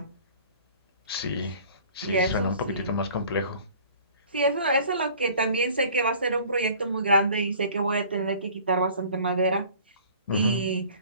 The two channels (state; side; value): inverted; both; correlation -0.49